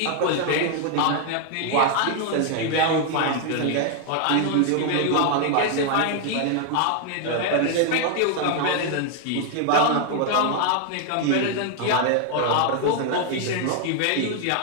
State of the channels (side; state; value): both; different; correlation 0.00